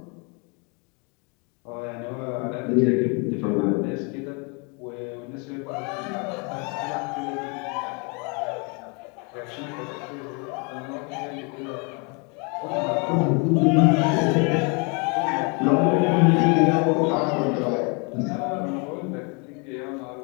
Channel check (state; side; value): quieter; right; 32.7 dB